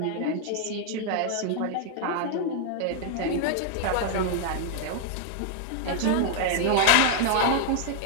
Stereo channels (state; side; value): different; both; correlation 0.00